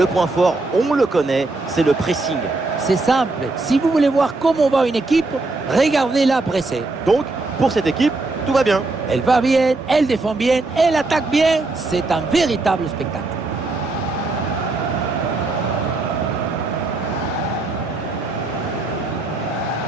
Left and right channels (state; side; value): quieter; left; 3.3 dB